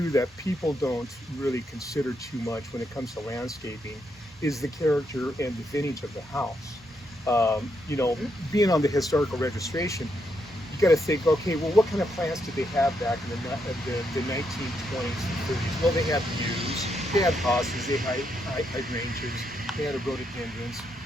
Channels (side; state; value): both; normal; correlation 0.79